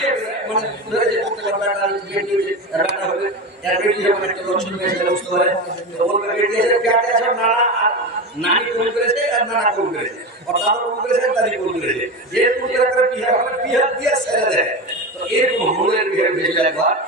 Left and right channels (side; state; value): both; normal; correlation 0.22